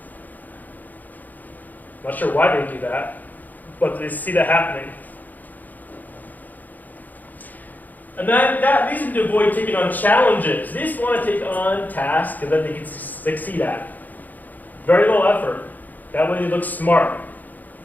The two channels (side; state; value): right; late; 0.083 ms